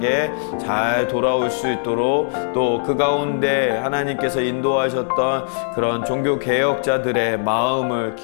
잘 돌아올 수 있도록 또 그 가운데 하나님께서 인도하셨던 그런 종교개혁자들의 마음을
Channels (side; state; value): right; silent; 63 dB below the other